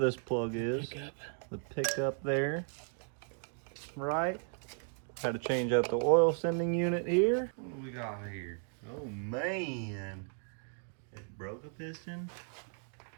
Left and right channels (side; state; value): left; silent; 54 dB below the other